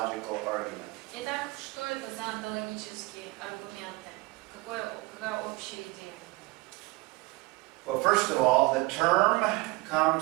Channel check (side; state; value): left; quieter; 22.7 dB